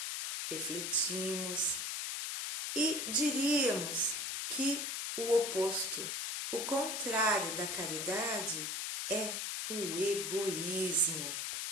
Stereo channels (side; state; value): left; noise; hiss, 2 dB below the sound